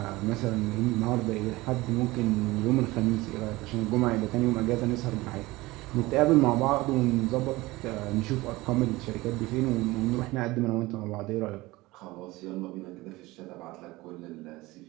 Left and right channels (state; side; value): quieter; left; 20.2 dB